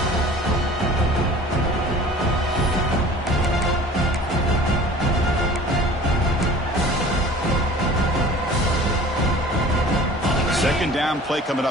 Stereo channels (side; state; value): both; normal; correlation 0.45